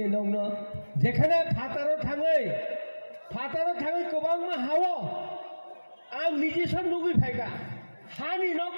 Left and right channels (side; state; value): both; inverted; correlation -1.00